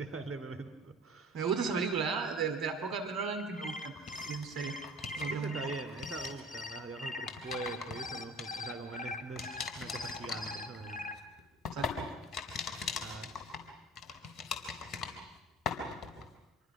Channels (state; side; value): normal; both; correlation 0.42